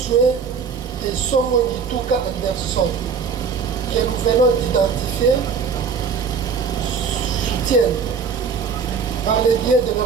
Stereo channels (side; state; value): left; quieter; 5.9 dB